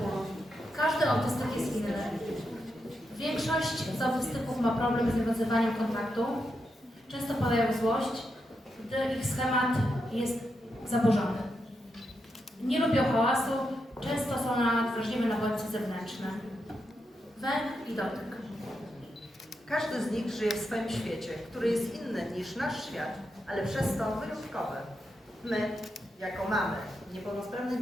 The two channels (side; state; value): both; normal; correlation 0.85